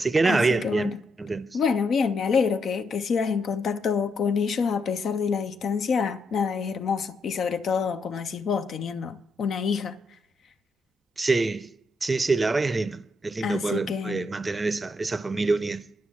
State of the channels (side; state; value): both; normal; correlation 0.79